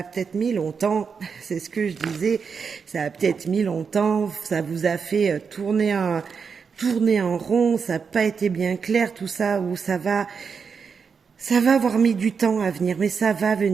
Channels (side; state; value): left; quieter; 5.9 dB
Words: peut-être mis longtemps, c'est ce que je disais, ça a peut-être mis longtemps, ça vous a fait tourner en rond, ça n'a pas été bien clair tout ça, ou ça va avoir mis du temps à venir, mais ça va